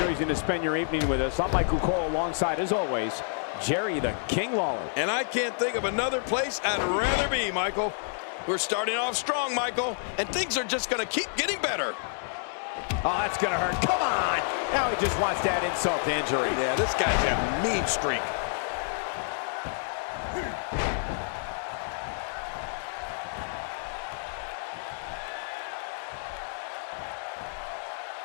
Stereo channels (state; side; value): silent; right; digital silence